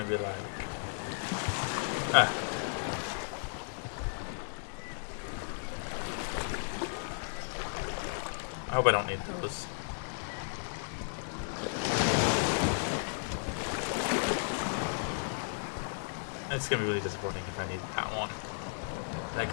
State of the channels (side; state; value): right; silent; 55 dB below the other